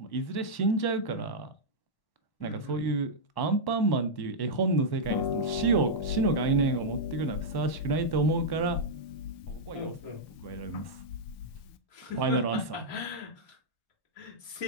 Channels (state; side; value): late; right; 1.1 ms